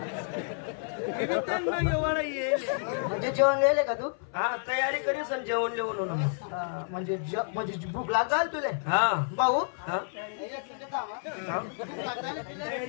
म्हणजे जेवण गेले का तू हा तयारी करीस आणि जेवण लिहून म्हणजे म्हणजे भूक लागल तुले हा भाऊ हा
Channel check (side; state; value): right; silent; 58 dB below the other